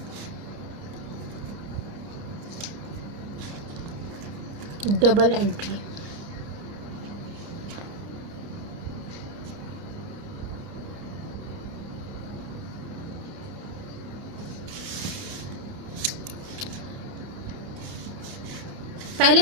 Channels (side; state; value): left; late; 30 ms